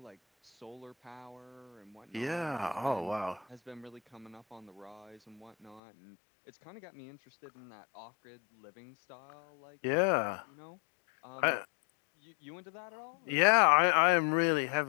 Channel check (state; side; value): drops out; right; at 5.8 s